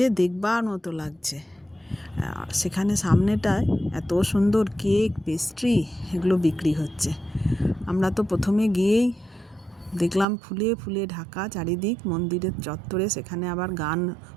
দেখবার মতো লাগছে। আর সেখানে সামনেটায় এত সুন্দর কেক, পেস্ট্রি এগুলো বিক্রি হচ্ছে। আমরা তো প্রথমে গিয়েই দেখলাম ফুলে ফুলে ঢাকা চারিদিক মন্দিরের চত্বরে। সেখানে আবার গান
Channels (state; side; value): drops out; left; at 10.2 s